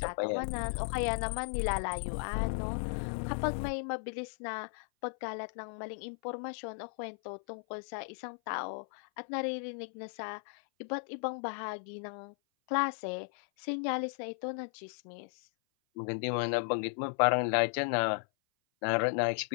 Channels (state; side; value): silent; right; 54 dB below the other